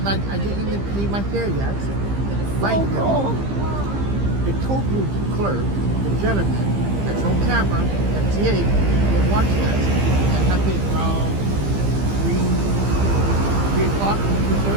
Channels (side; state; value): left; late; 15 ms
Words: I didn't even pay my fare yet. Right now, the toll booth clerk, the gentleman that's on camera, MTA, will watch that. That happened around 3 o'clock,